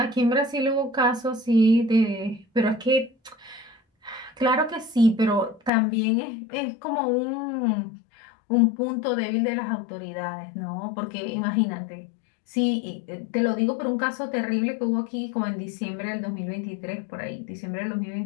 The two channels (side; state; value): right; drops out; at 5.7 s